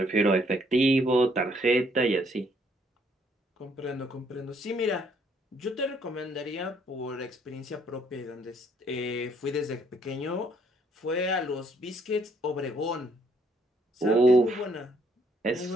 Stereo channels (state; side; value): normal; both; correlation 0.67